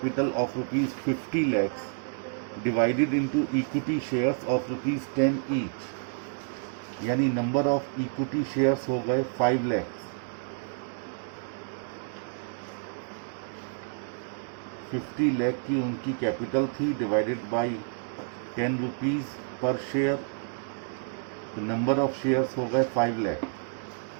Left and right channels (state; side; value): silent; left; digital silence